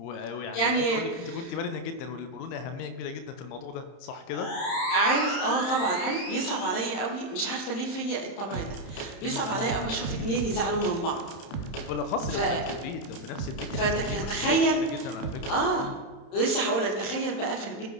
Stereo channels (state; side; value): late; right; 31 ms